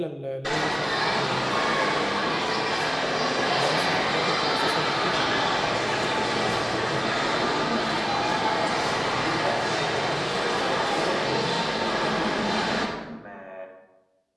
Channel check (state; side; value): identical; both; correlation 1.00